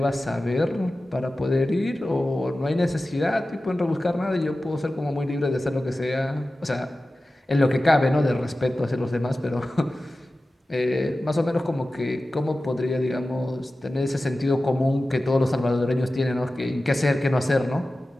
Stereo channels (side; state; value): both; normal; correlation 0.95